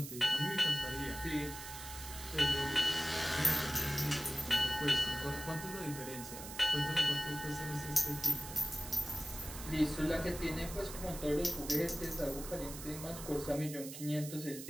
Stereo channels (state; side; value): noise; right; hiss, 10 dB below the sound